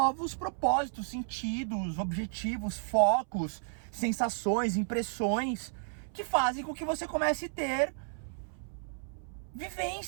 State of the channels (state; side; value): silent; left; 56 dB below the other